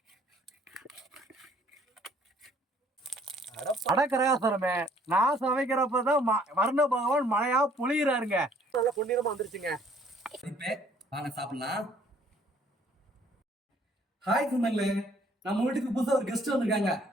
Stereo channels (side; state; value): both; normal; correlation 0.60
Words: அடக்கரகாசரமே, நான் சமைக்கிறப்பதான் வர்ண பகவான் மழையா பொழியிறாருங்க. நல்லா பொன்னிறமா வந்துருச்சுங்க. வாங்க சாப்பிடலாம். ஹாய் சொன்னாங்களே, நம்ம வீட்டுக்கு புதுசா ஒரு கெஸ்ட் வந்திருக்காங்க,